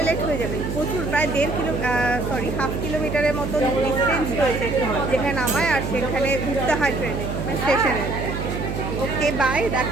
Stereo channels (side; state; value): right; noise; hum, 5 dB below the sound